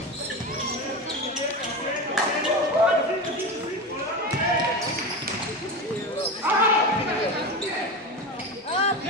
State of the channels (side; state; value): both; normal; correlation 0.23